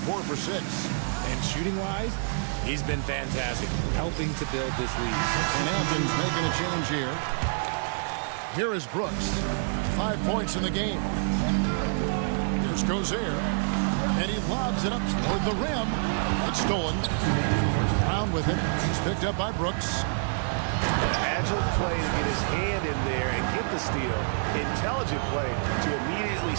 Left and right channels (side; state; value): left; silent; 58 dB below the other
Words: for 6. And shooting-wise, he's been fantastic, helping to build this lead. And Athens making a change here. Here is Brooks. 5 points in the game. Here's Gozer. And he lobs it up toward the rim. It's stolen. Brown with it. He's picked up by Brooks. Agile play to get his hand in there and get the steal. Intelligent play to immediately